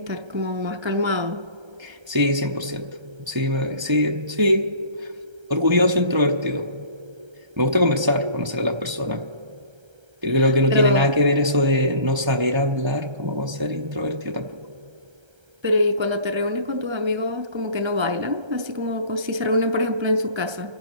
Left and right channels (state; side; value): late; left; 1.3 ms